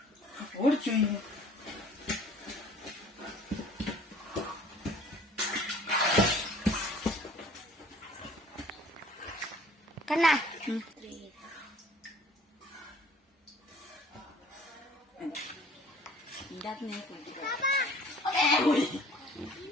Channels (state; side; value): normal; both; correlation 0.52